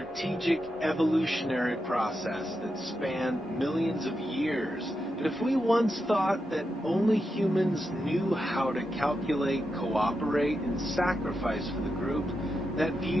evolutionary process that spanned millions of years. And if we once thought that only humans knew how to calculate, cooperate, and sacrifice for the group, that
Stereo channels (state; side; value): normal; both; correlation 0.87